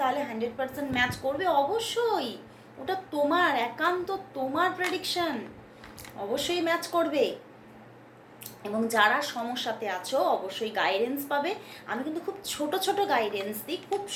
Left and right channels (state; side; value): identical; both; correlation 1.00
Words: 100% ম্যাচ করবে। অবশ্যই, ওটা তোমার একান্ত তোমার প্রেডিকশন, অবশ্যই ম্যাচ করবে। এবং যারা সমস্যাতে আছো অবশ্যই গাইডেন্স পাবে। আমি কিন্তু খুব ছোট ছোট গাইডেন্স দিই, খুব